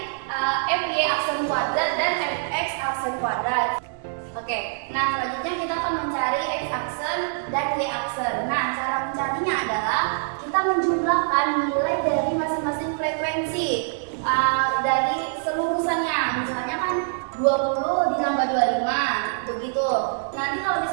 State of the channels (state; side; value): silent; left; 62 dB below the other